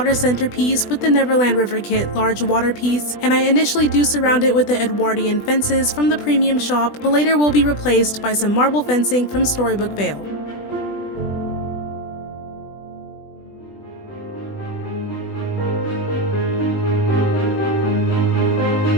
centerpiece with the Neverland River Kit large water piece, and I initially do surround it with the Edwardian fences from the premium shop, but later will be replaced by some marble fencing from Storybook Vale.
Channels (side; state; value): right; late; 20 ms